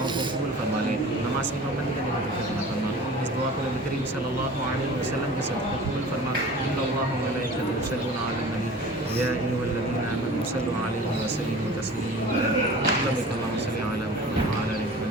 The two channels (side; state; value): both; normal; correlation 0.41